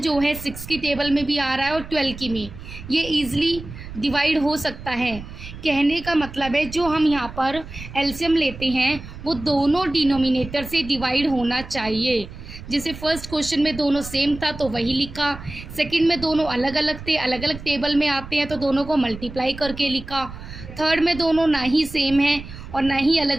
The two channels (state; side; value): noise; right; rumble, 13 dB below the sound